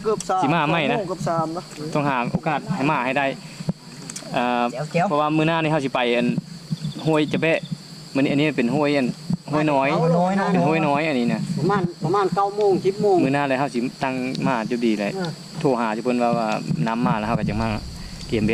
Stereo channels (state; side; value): identical; both; correlation 1.00